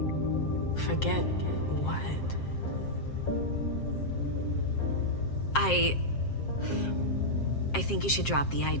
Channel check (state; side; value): late; right; 7.5 ms